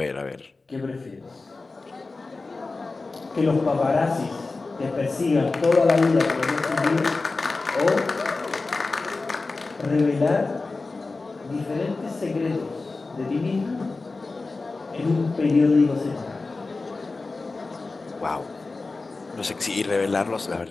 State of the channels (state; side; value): quieter; right; 3.7 dB